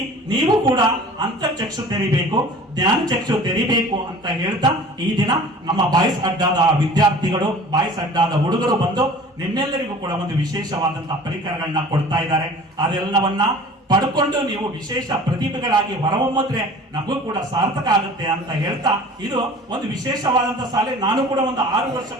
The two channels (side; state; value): both; normal; correlation 0.44